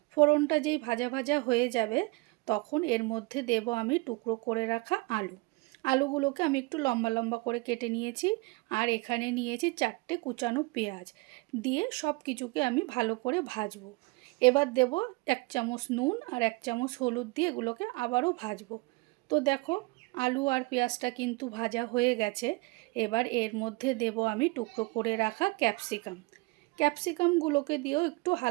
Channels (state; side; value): quieter; left; 25.3 dB